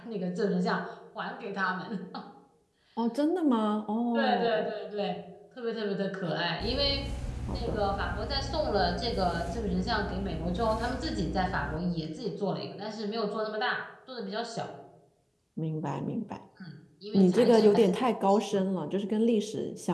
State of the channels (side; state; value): both; identical; correlation 1.00